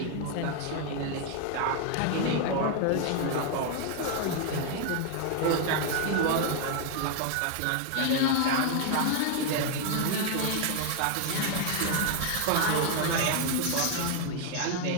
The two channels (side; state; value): both; different; correlation 0.00